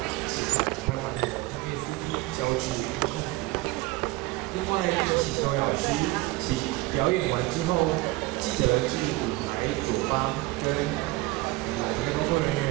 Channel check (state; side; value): quieter; left; 20.0 dB